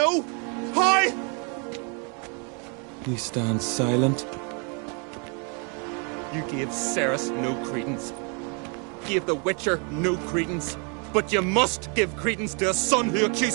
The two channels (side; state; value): left; quieter; 36.2 dB